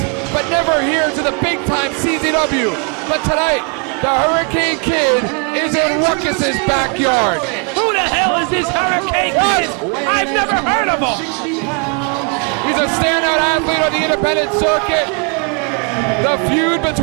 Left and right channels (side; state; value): left; quieter; 37.6 dB